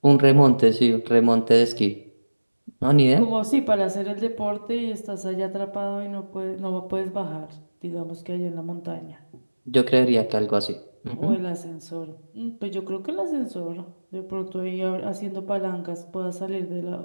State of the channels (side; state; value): both; inverted; correlation -1.00